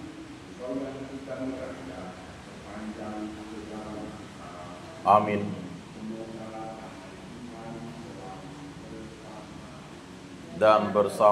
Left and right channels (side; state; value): both; identical; correlation 1.00